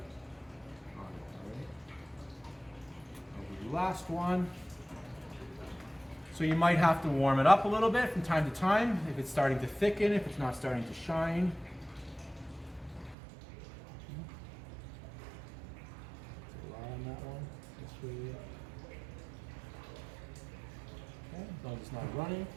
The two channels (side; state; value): left; drops out; at 13.2 s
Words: on it, alright? And the last one. So you might have to warm it up a little bit from time to time if it's starting to thicken, if it's not starting to shine. On that one, this way. Okay, as long as it's not running,